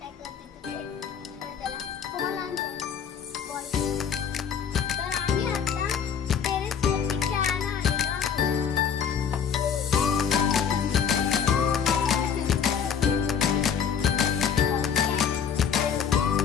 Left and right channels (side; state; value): right; quieter; 7.5 dB